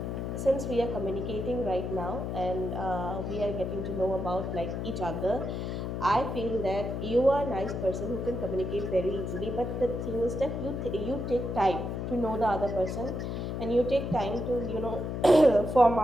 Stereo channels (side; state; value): left; noise; hum, 3 dB below the sound